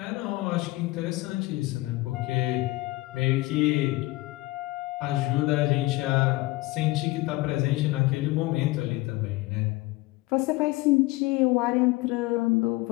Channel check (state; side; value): quieter; right; 20.3 dB